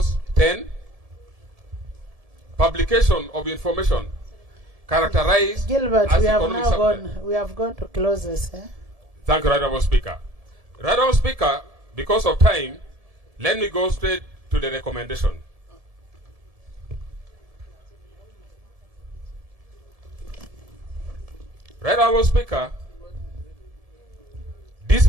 10. Publication of information characterized Gilbert, as we have economic now substance. gone. We have gone to clauses. Thank you, Right Honourable Speaker. Right Honourable Speaker, because of time, let me go straight to the recommendation. Right Honourable Speaker, this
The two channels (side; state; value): left; late; 1.7 ms